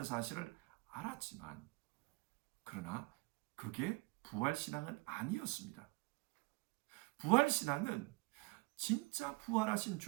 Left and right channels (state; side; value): quieter; left; 25.3 dB